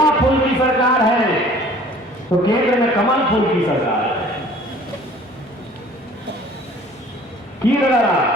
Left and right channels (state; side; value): normal; both; correlation 0.50